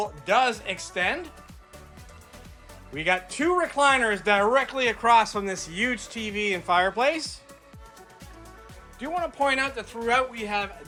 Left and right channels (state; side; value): identical; both; correlation 1.00